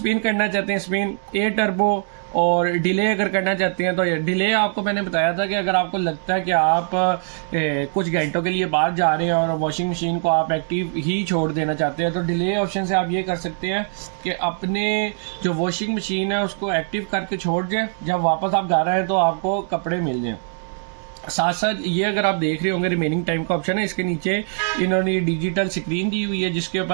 करना चाहते हैं स्पिन, एयर टर्बो, और डिले अगर करना चाहते हैं तो डिले आपको मैंने बताया था कि अगर आपको लगता है कि आप कुछ घंटों के लिए बाहर जा रहे हैं और वॉशिंग मशीन को आप एक्टिव ही छोड़ देना चाहते हैं तो डिले ऑप्शन से आप ये कर सकते हैं कि अपने जो वॉशिंग मशीन है उसको एक्टिव करके छोड़ दें, जब वापस आप घर आए तो आपको कपड़े मिल जाएं। साथ साथ ये अगर आप देख रहे होंगे रिमेनिंग टाइम का ऑप्शन है, इसके नीचे इन्होंने डिजिटल स्क्रीन दी हुई है जिसके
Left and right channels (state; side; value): silent; left; 64 dB below the other